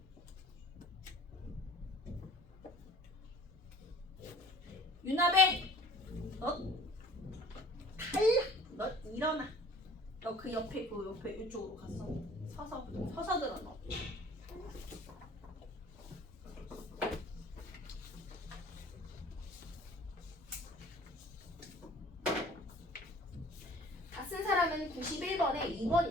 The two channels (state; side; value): normal; both; correlation 0.50